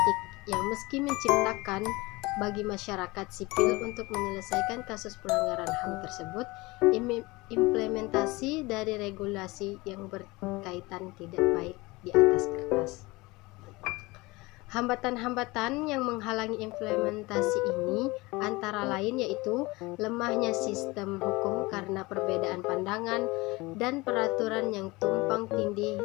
yang meski menciptakan bagi masyarakat sipil untuk menyelesaikan kasus pelanggaran HAM tersebut, implementasi dari regulasi yang berkaitan tidak baik di atas kertas. Hambatan-hambatan yang menghalangi implementasi ini antara lain yaitu lemahnya sistem hukum karena perbedaan pandangan dan peraturan yang tumpang tindih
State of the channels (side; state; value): right; quieter; 22.6 dB